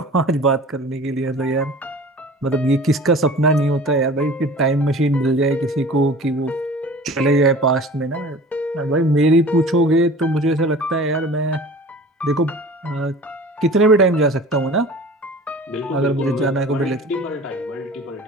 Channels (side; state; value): both; normal; correlation 0.42